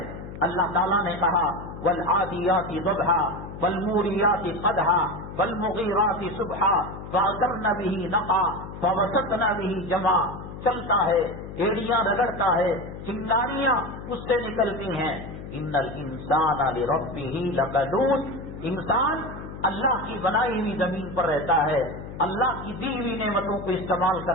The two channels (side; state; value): left; noise; hum, 11 dB below the sound